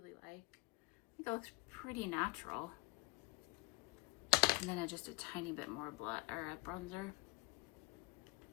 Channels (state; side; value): quieter; right; 25.6 dB